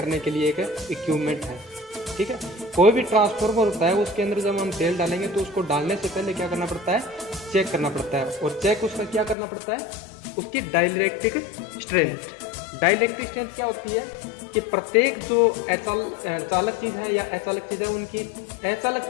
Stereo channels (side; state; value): right; drops out; at 9.3 s